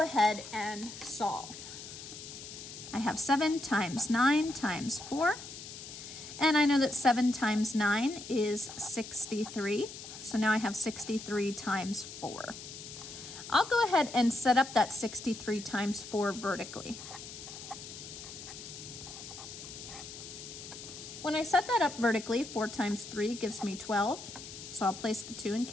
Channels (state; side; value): noise; left; hiss, 12 dB below the sound